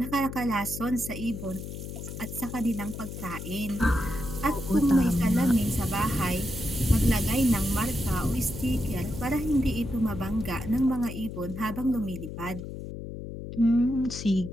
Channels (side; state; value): left; noise; hum, 9 dB below the sound